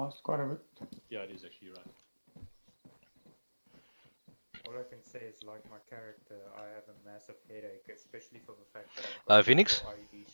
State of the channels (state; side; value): inverted; both; correlation -1.00